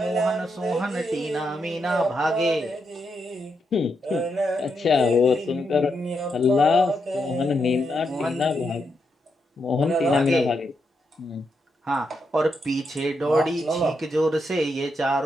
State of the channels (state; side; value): normal; both; correlation 0.82